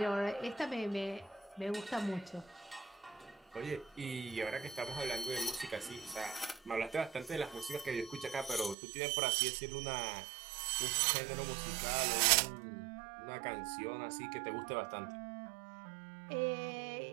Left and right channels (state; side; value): drops out; left; at 8.8 s